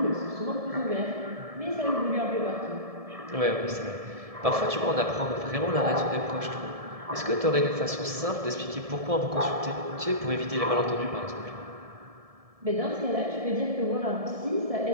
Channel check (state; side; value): late; left; 1.7 ms